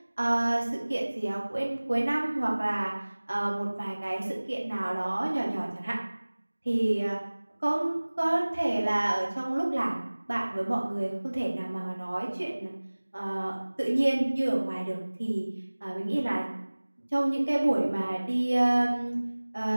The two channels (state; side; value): inverted; both; correlation -1.00